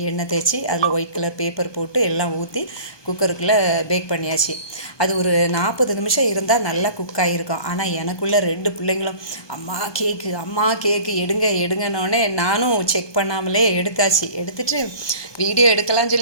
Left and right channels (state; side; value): late; right; 1.2 ms